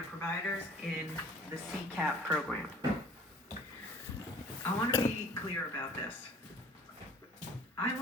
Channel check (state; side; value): normal; both; correlation 0.50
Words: providers in the CCAP program. I want to be clear about this. I